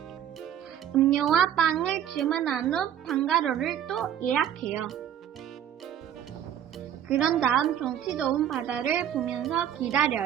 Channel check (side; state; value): left; quieter; 10.0 dB